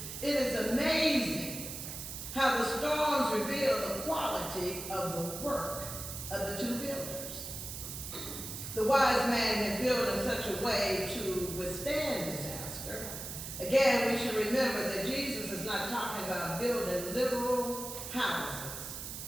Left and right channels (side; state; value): right; noise; hiss, 8 dB below the sound